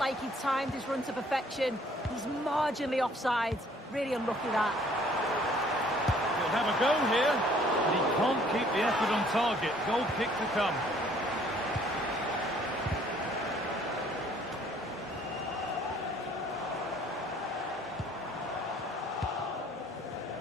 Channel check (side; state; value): both; normal; correlation 0.59